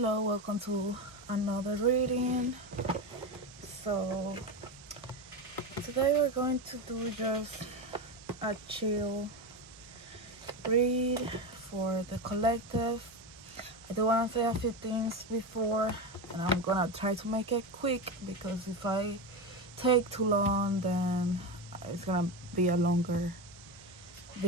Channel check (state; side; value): normal; both; correlation 0.18